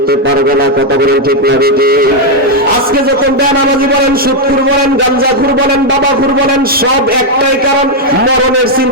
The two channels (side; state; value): both; normal; correlation 0.01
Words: পারবে না। কথা বলেন ঠিক না বেঠিক? আজকে যখন বেনামাজি বলেন, সুদখোর বলেন, গাঞ্জাখোর বলেন, বাবাখোর বলেন, সব একটাই কারণ, মরণের